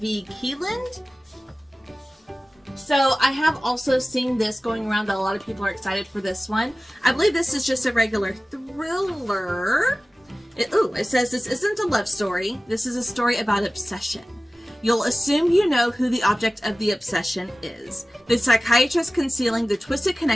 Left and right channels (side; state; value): both; normal; correlation 0.96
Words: V. Keeland. So I have also seen this going around that a lot of people are excited for this one. I believe this is just a regular thriller. It says this isn't a love story. This is a story about obsession. You'll assume you know who the object of the obsession is. The psychiatrist concealing the twisted